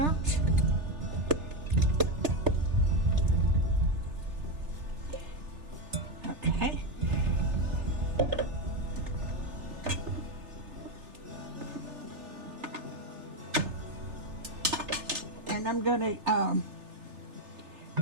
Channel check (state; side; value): late; left; 3.4 ms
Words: Okay. And I'm going to